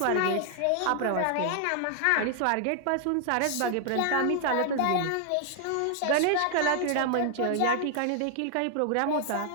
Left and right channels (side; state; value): both; different; correlation 0.00